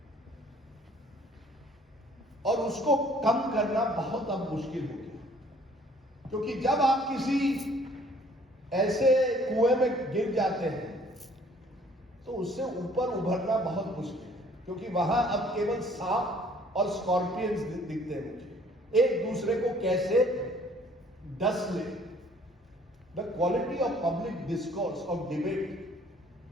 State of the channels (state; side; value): normal; both; correlation 0.57